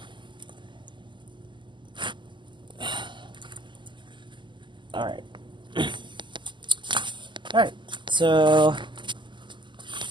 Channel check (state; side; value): late; left; 0.23 ms